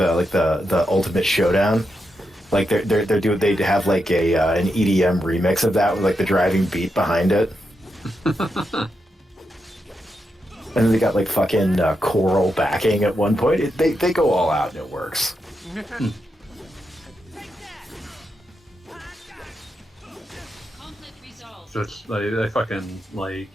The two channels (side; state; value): both; normal; correlation 0.85